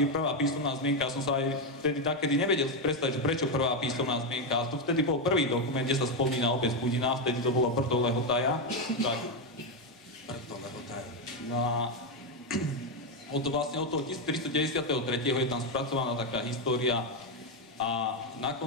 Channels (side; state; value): both; normal; correlation 0.06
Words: písomná zmienka, som sa aj vtedy takedy nevedel predstaviť, že prečo prvá písomná zmienka. A to vtedy bol prvý dokument, kde sa spomína obec Budina, vtedy to bolo Brdo Lehotaja. Tak. Brdo Lehotaja. No a od toho 1393. je tam spracovaná taká história a na